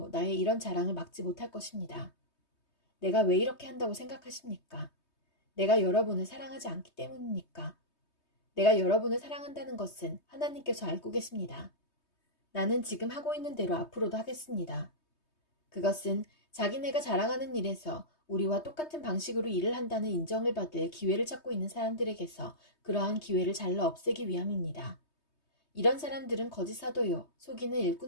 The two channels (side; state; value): right; late; 3.2 ms